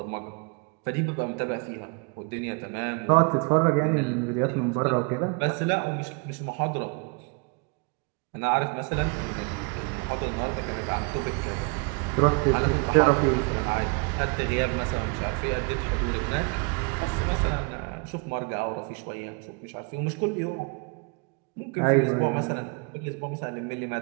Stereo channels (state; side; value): quieter; left; 33.8 dB